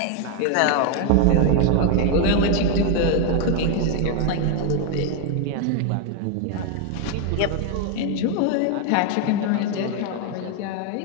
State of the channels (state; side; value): different; both; correlation 0.00